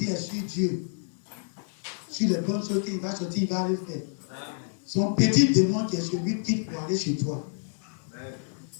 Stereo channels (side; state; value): right; silent; digital silence